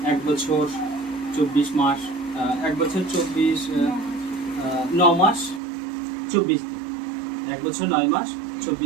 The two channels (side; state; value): left; drops out; at 5.6 s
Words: 1 বছর 24 মাস, 1 বছর 9 মাস 24 দিন, 1 বছর 9 মাস